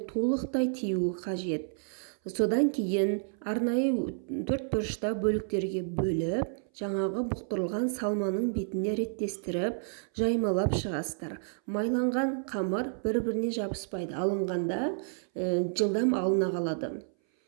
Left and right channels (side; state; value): left; silent; 58 dB below the other